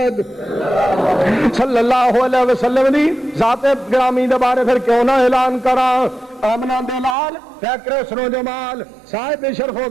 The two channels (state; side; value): drops out; left; at 7.2 s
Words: صلی اللہ علیہ وسلم دی ذات گرامی دے بارے پھر کیوں نہ اعلان کراں آمنا دے لال فیکر حسن و جمال صاحب شرف و